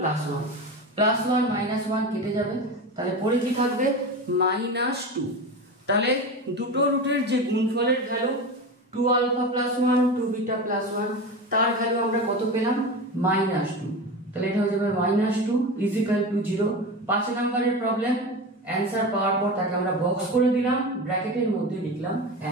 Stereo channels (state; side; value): normal; both; correlation 0.25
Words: 1 প্লাস 1 -1 কেটে যাবে, তাহলে পরে কি থাকবে -2, তাহলে দুটো রুটের যে গুণফলের value 2 alpha plus 1 2 beta plus 1 তার ভ্যালু আমরা কত পেলাম -2, তাহলে এটা হয়ে যাবে -2 ইজ ইকুয়াল টু 0। 5 নম্বরের প্রবলেম অ্যানসার পাওয়ার পর তাকে আমরা বক্স করে দিলাম, ব্র্যাকেটের মধ্যে লিখলাম